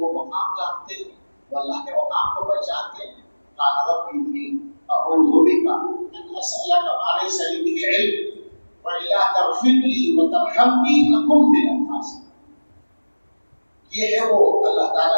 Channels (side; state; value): both; inverted; correlation -1.00